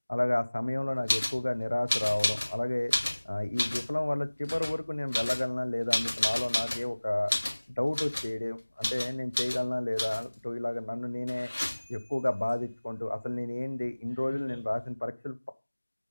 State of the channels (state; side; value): inverted; both; correlation -1.00